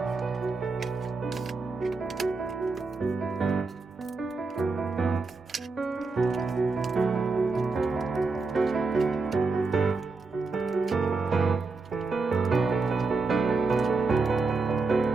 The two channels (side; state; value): left; quieter; 4.0 dB